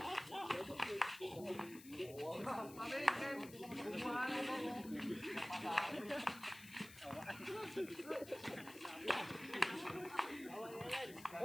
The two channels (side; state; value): left; noise; hiss, 17 dB below the sound